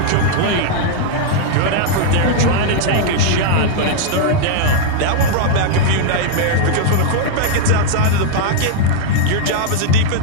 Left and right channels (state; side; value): different; both; correlation 0.00